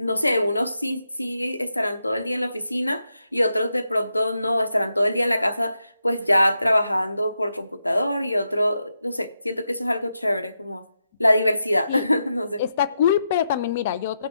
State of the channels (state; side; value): inverted; both; correlation -0.85